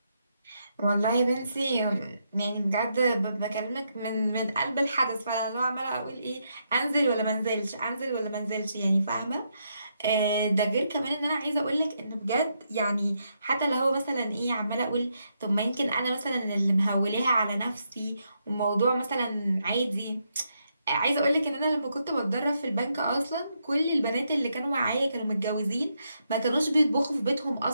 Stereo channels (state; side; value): inverted; both; correlation -0.80